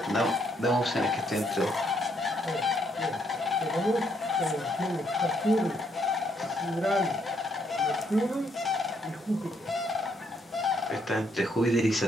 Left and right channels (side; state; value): both; normal; correlation 0.72